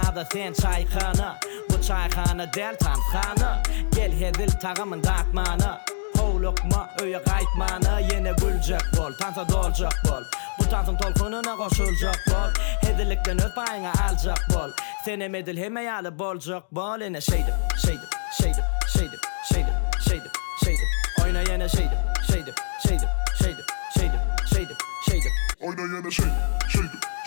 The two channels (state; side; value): silent; right; digital silence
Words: sen çaykanı Bu çaykanı del tanıkanı Gel hedil tağımın dağıtmanı Hovlukma öye qaytmanı Yine gülecek bol, tansa dolacak bol Bu tansın tolkununa koşulacak bol Hedilikten öz payına alacak bol Senem edil hemeyalı bolacak bol Yine şeydim Oyna yine şeydim Oyna yana şeydim.